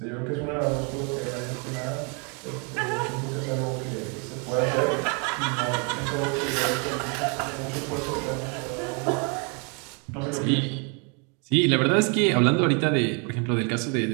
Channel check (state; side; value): quieter; left; 34.9 dB